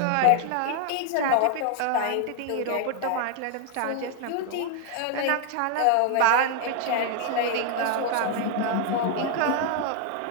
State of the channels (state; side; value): different; both; correlation 0.00